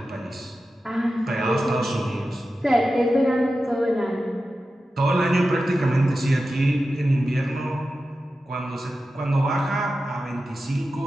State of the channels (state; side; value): normal; both; correlation 0.92